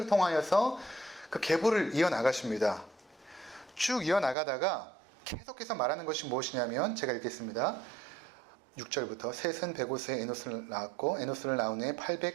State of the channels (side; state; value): left; drops out; at 4.4 s